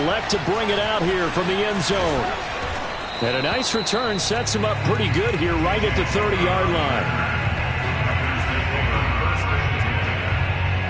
elect to bring it out here from the end zone. And a nice return sets him up pretty good here right at the 30-yard line.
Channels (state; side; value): identical; both; correlation 1.00